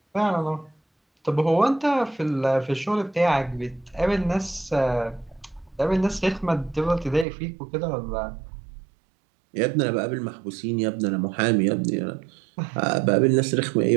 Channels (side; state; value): left; drops out; at 7.2 s